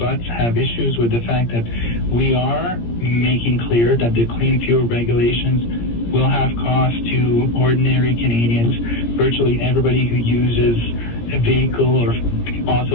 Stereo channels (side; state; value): right; late; 17 ms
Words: have issues with the fact that we are making clear that the clean fuel regulations will have costs to ordinary Canadians, virtually everybody who uses a vehicle or